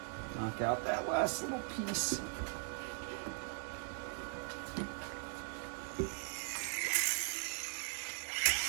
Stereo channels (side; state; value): left; silent; 51 dB below the other